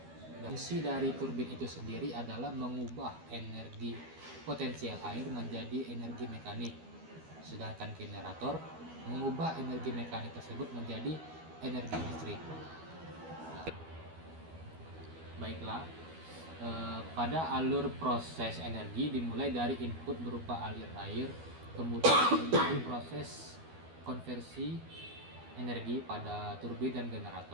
Fungsi dari turbin itu sendiri adalah mengubah energi potensial air menjadi energi mekanik, sedangkan generator mengubah energi mekanik tersebut menjadi energi listrik. Baiklah, pada alur proses energi dimulai dari input berupa aliran air, kemudian terjadi proses konversi energi pada turbin dan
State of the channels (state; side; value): late; left; 12 ms